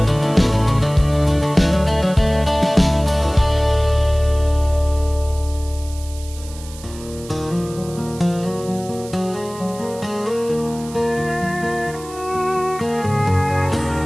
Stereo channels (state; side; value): noise; right; hiss, 18 dB below the sound